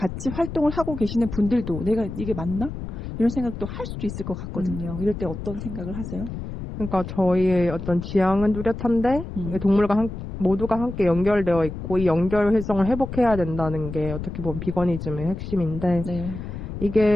활동을 하고 계시는 분들도 내가 이게 맞나? 이런 생각도 할 수도 있을 것 같거든요. 이럴 때 어떤 생각을 하세요? 그러니까 저희의 어떤 지향은 뚜렷한데 동물과 모두가 함께 연결되어 있고 이 연결성을 회복해야 된다는 게 어떻게 보면 비거니즘의 핵심인데 네.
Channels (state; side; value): noise; left; rumble, 8 dB below the sound